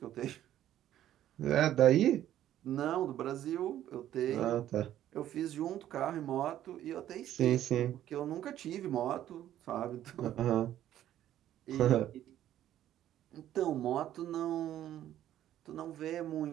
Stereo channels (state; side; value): quieter; left; 12.1 dB